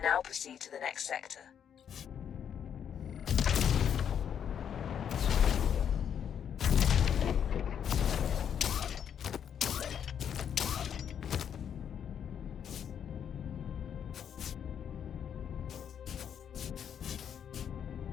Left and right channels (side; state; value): right; quieter; 8.5 dB